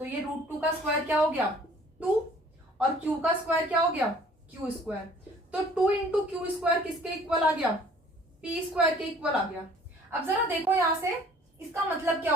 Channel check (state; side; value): normal; both; correlation 0.53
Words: ये √2 का स्क्वायर क्या हो गया 2, और क्यू का स्क्वायर क्या हो गया क्यू स्क्वायर। तो 2 इंटू क्यू स्क्वायर किसके इक्वल आ गया, पी स्क्वायर के इक्वल आ गया। अब जरा देखो यहां से, इसका मतलब क्या